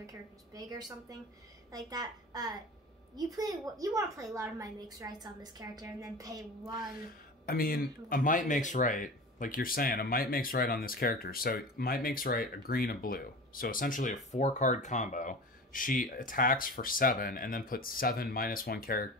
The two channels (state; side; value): normal; both; correlation 0.34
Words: characters big or something like that. You want to play a lot of Might Makes Rights on this character and then pay 1. A Might Makes Right, like you're saying, a Might Makes Right on this character. So Might Makes Right, a green, a blue. So essentially a 4-card combo. She attacks for 7 and then puts 7 -1